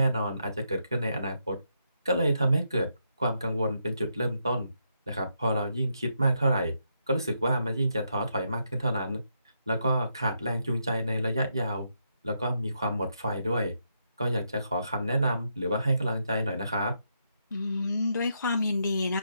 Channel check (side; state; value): both; inverted; correlation -0.79